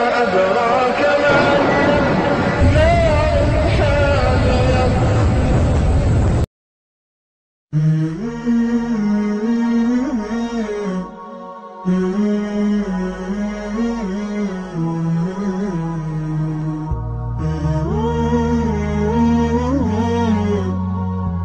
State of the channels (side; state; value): both; identical; correlation 1.00